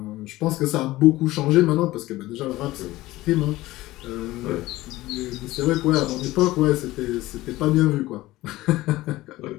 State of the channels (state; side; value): quieter; right; 17.7 dB